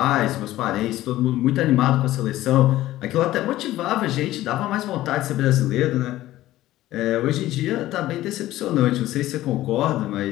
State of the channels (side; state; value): right; quieter; 15.3 dB